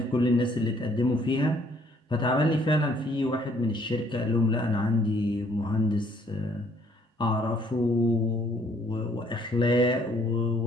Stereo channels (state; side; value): normal; both; correlation 0.64